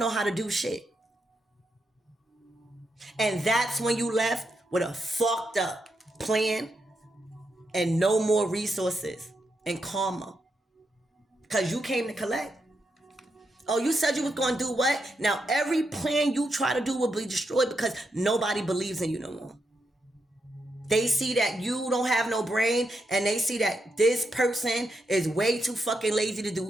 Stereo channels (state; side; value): normal; both; correlation 0.83